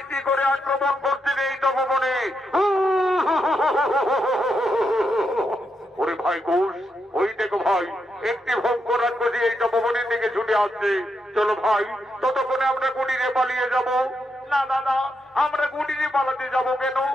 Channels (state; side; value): normal; both; correlation 0.82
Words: করে আক্রমণ করছেন এই তপবনে। ওরে ভাই ঘোষ, ওই দেখো ভাই, একটি ভয়ঙ্কর রাক্ষসী এই তপবনের দিকে ছুটে আসছে। চলো ভাই, ততক্ষণে আমরা কুটিরে পালিয়ে যাব। না দাদা, আমরা কুটিরে পালাতে যাব কেন?